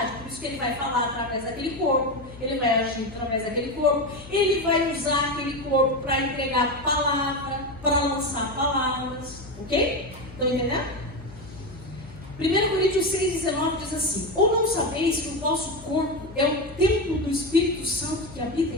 Por isso que ele vai falar através daquele corpo, ele vai agir através daquele corpo, ele vai usar aquele corpo para entregar palavra, para lançar palavras, ok? Estão entendendo? 1 Coríntios 6,19 diz assim: ou não sabeis que o vosso corpo é o templo do Espírito Santo que habita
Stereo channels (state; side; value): noise; left; hum, 18 dB below the sound